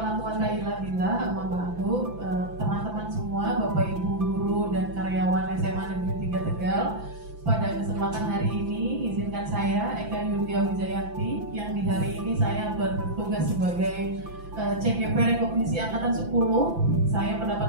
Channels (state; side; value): late; left; 5.9 ms